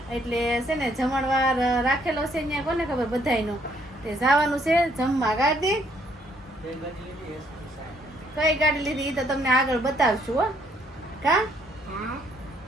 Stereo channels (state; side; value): normal; both; correlation 0.68